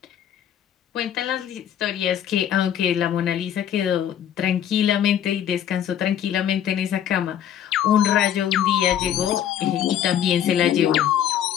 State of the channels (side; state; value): right; quieter; 10.0 dB